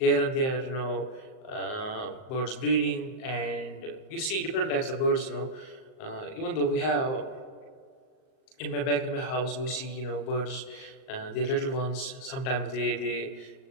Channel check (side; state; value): right; late; 38 ms